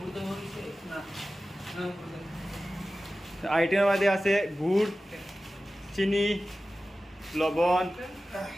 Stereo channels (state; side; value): normal; both; correlation 0.95